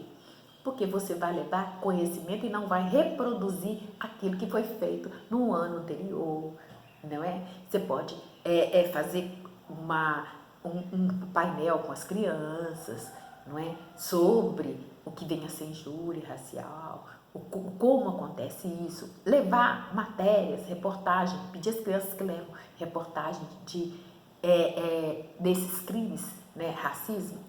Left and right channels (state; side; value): identical; both; correlation 1.00